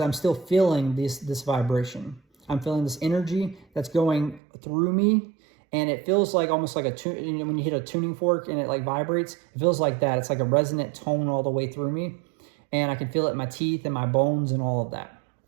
I'm still feeling this vibration. I'm feeling this energy that's going through me. And it feels like almost like when you hit a tuning fork and it like vibrates, it feels like that. It's like a resonant tone all the way through me. And I can feel it in my teeth and my bones and all of that.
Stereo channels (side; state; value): left; drops out; at 4.4 s